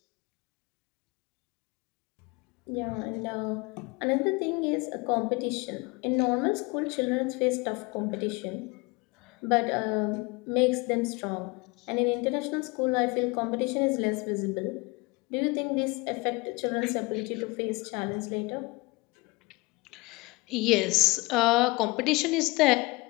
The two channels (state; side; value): quieter; right; 24.7 dB